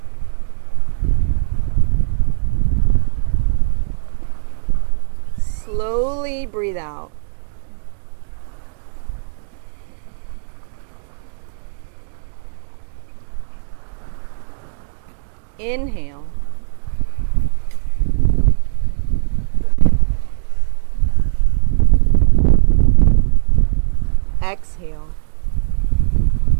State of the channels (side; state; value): left; silent; 67 dB below the other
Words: Slowly breathe out. Inhale. Exhale.